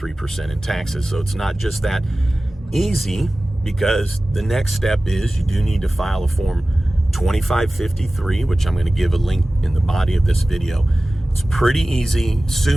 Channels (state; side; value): normal; both; correlation 0.97